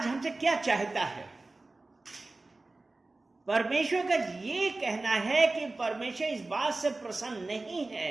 हमसे क्या चाहता है? परमेश्वर का ये कहना है कि परमेश्वर इस बात से प्रसन्न नहीं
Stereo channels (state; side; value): quieter; left; 3.2 dB